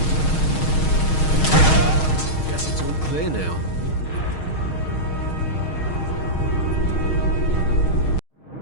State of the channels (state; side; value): late; right; 6.4 ms